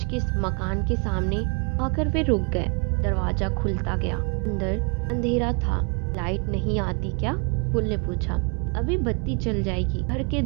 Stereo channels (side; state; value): left; quieter; 34.5 dB